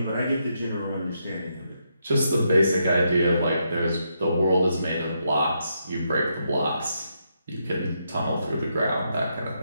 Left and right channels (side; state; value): both; inverted; correlation -0.80